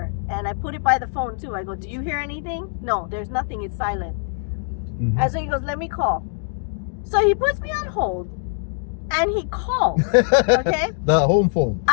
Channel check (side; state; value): right; silent; 64 dB below the other